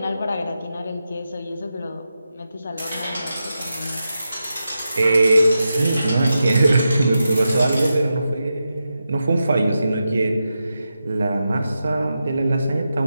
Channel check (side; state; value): both; inverted; correlation -0.89